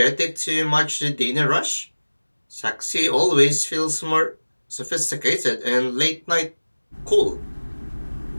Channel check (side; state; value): both; inverted; correlation -1.00